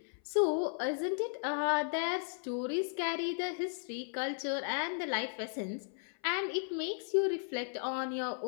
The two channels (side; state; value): right; silent; 54 dB below the other